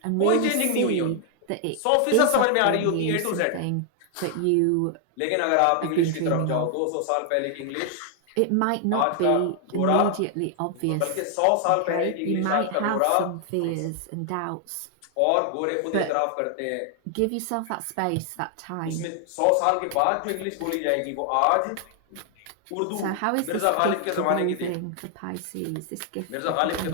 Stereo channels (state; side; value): different; both; correlation 0.00